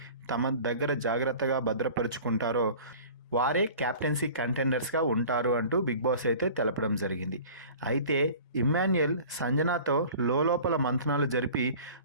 తమ దగ్గర జాగ్రత్తగా భద్రపరుచుకుంటారో వారే క్యాప్టెన్సీ కంటెండర్స్గా ఉంటారు అంటూ బిగ్ బాస్ అయితే తెలపడం జరిగింది. అయితే ఇమ్మాన్యుయల్ సంజనాతో లోపల మంతనాలు జరిపి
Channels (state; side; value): inverted; both; correlation -0.43